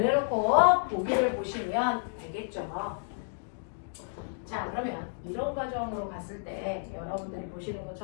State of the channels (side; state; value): right; silent; digital silence